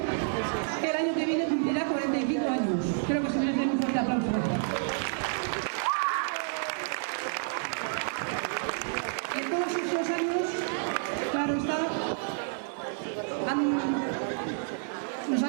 que el año que viene cumplirá 45 años. Creo que se merece un fuerte aplauso. Y en todos esos años, claro está, nos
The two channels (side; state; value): left; silent; digital silence